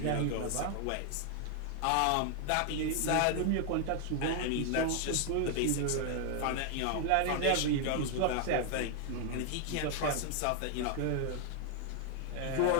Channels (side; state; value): both; different; correlation 0.00